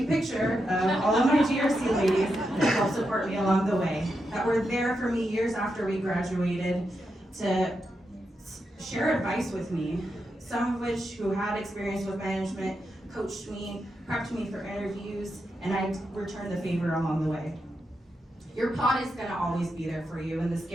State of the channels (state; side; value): normal; both; correlation 0.86